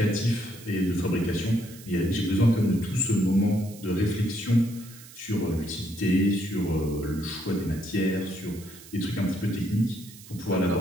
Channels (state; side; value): noise; right; hiss, 19 dB below the sound